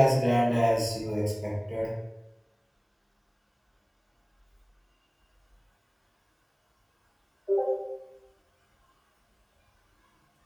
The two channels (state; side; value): identical; both; correlation 1.00